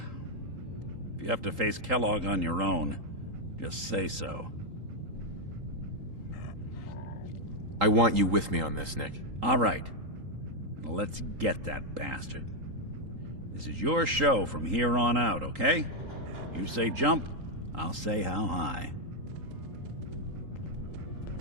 If you have to face Kellogg on your own, just say so. I want you with me on this, Nick. All right. Now let's get that bastard. This is your show from here on out, okay? You say jump, I'll say how high.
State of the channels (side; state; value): left; late; 3.8 ms